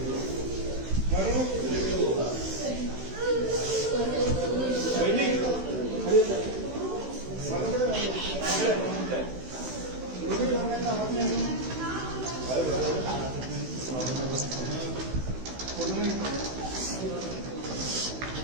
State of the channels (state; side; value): late; left; 16 ms